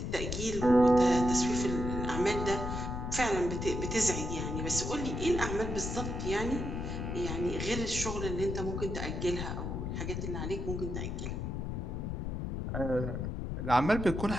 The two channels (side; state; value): left; noise; rumble, 3 dB below the sound